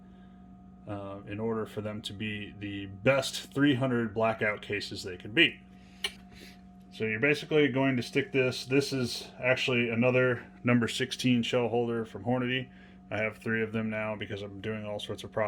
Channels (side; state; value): both; identical; correlation 1.00